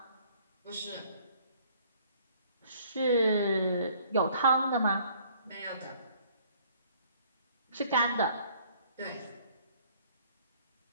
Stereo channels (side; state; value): both; inverted; correlation -0.59